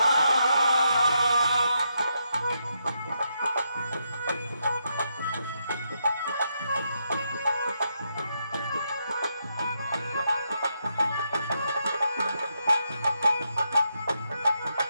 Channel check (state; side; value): inverted; both; correlation -0.81